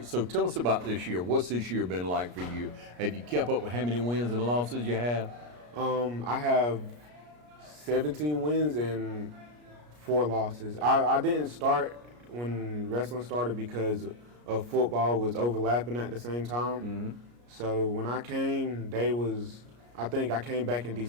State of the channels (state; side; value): late; left; 33 ms